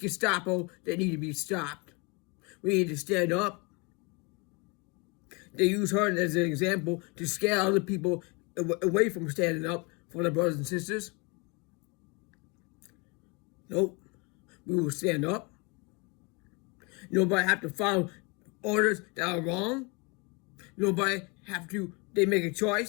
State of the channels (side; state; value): right; quieter; 29.9 dB